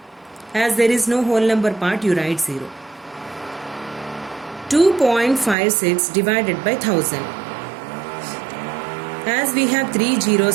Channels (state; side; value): drops out; left; at 5.6 s